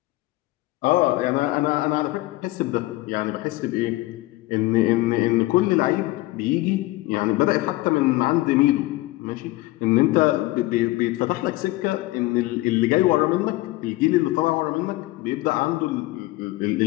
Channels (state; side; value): quieter; right; 19.0 dB